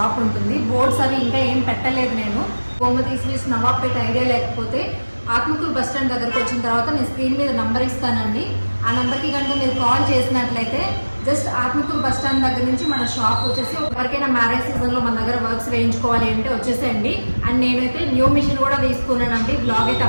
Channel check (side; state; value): both; inverted; correlation -1.00